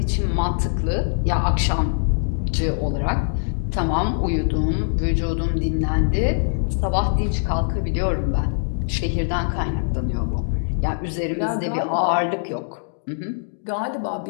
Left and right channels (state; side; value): silent; right; digital silence